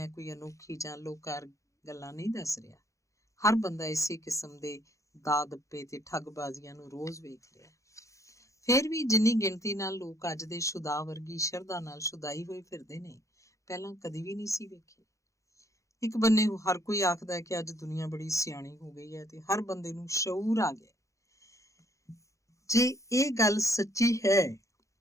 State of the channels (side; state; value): right; late; 0.15 ms